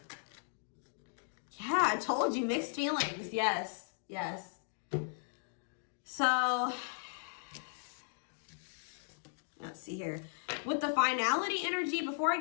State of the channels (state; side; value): silent; right; digital silence